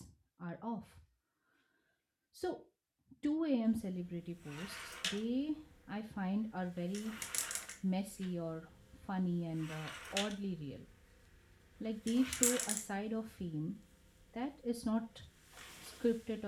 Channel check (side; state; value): both; identical; correlation 1.00